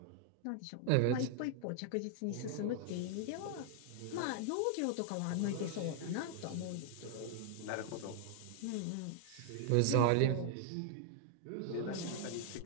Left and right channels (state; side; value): different; both; correlation 0.00